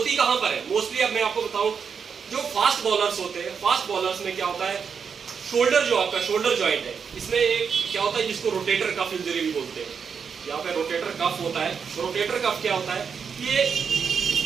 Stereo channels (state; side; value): quieter; left; 6.4 dB